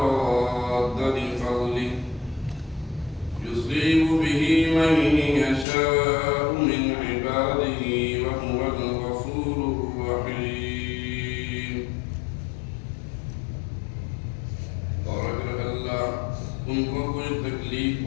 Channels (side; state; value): right; drops out; at 5.7 s